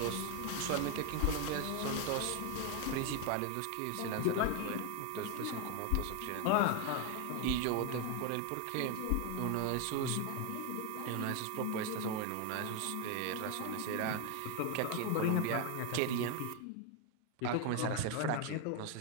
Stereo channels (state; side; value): different; both; correlation 0.01